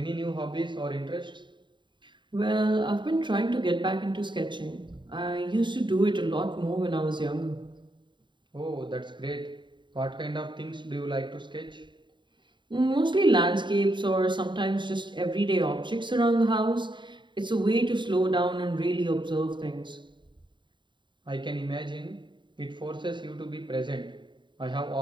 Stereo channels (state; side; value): late; left; 0.23 ms